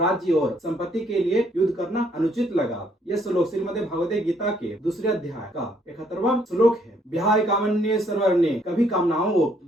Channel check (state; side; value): normal; both; correlation 0.67